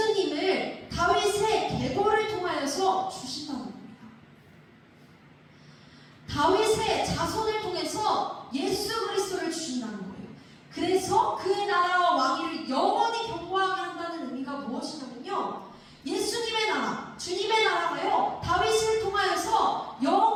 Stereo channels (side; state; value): both; identical; correlation 1.00